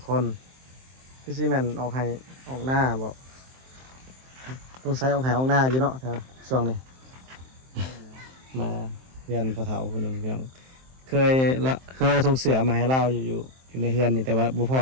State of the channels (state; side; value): late; left; 23 ms